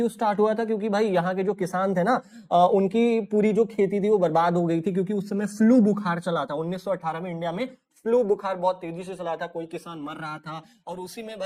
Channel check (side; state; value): both; identical; correlation 1.00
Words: स्टार्ट हुआ था, क्योंकि भाई यहाँ के जो किसान थे ना, उनकी पूरी जो खेती थी वो बर्बाद हो गई थी, क्योंकि उस समय फ्लू बुखार चला था 1918 में। इंडिया में फ्लू बुखार बहुत तेजी से चला था, कोई किसान मर रहा था। और उसी में